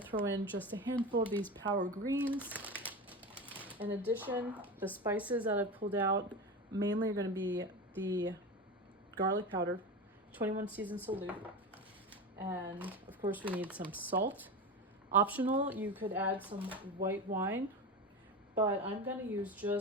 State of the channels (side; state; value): both; normal; correlation 0.23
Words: in just a handful of these power greens. In addition, the spices that I've pulled out mainly are going to be the garlic powder, 21 seasoned salute, and of course we need some salt. Optional, you could add some white wine, but I'm going to use